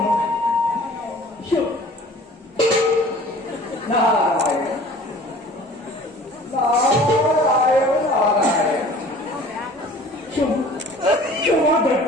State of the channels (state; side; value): normal; both; correlation 0.47